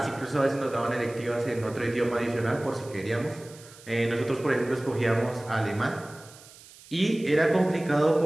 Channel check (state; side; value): noise; right; hiss, 21 dB below the sound